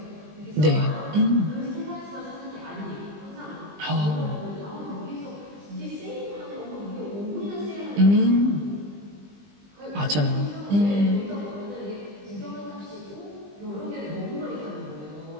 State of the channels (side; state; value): left; late; 20 ms